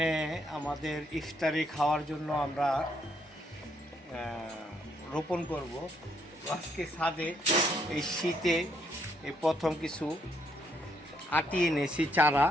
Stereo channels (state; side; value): normal; both; correlation 0.73